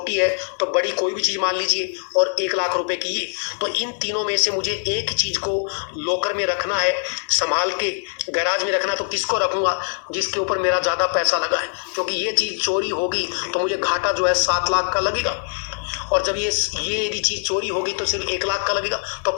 है तो बड़ी कोई भी चीज मान लीजिए, और 1 लाख रुपए की ये, तो इन तीनों में से मुझे एक चीज को लॉकर में रखना है, संभाल के गैराज में रखना। तो किसको रखूंगा? जिसके ऊपर मेरा ज्यादा पैसा लगा है, क्योंकि ये चीज चोरी होगी तो मुझे घाटा जो है 7 लाख का लगेगा, और जब ये यदि चीज चोरी होगी तो सिर्फ 1 लाख का लगेगा। तो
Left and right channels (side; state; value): right; silent; digital silence